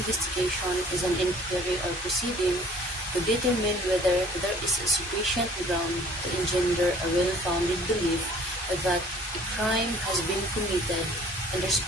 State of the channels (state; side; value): normal; both; correlation 0.53